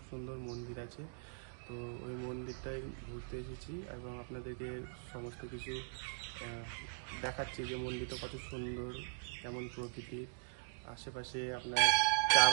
সুন্দর মন্দির আছে। তো ওই মন্দিরটায় ঘুরতে এসেছি এবং আপনাদেরকে সমস্ত কিছু দেখাচ্ছি যে মন্দিরটা কত সুন্দর, কেমন প্রকৃতির। আশেপাশে আপনার চা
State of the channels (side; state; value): left; silent; digital silence